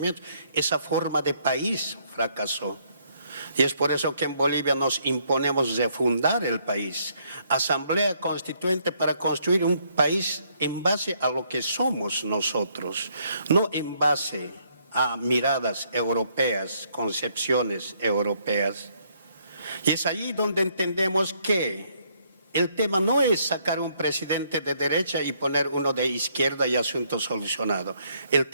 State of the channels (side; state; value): both; inverted; correlation -0.70